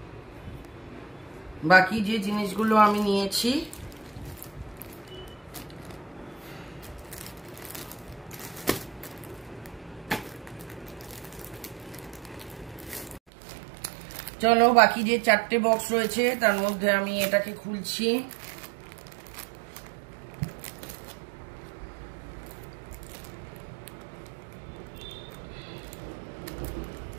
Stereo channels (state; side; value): drops out; left; at 13.2 s